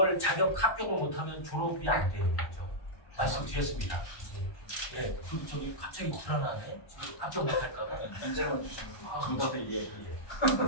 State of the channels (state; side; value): late; right; 1.2 ms